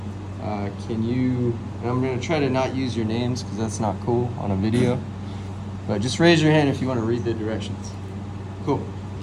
can you, and I'm going to try to not use your names because that's not cool on a video. But just raise your hand if you want to read the directions. Cool.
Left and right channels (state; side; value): identical; both; correlation 1.00